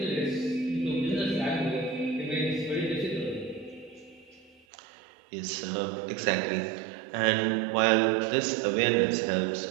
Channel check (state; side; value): drops out; left; at 4.6 s